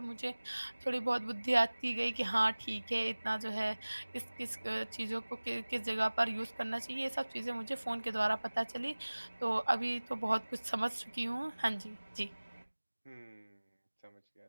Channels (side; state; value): both; inverted; correlation -1.00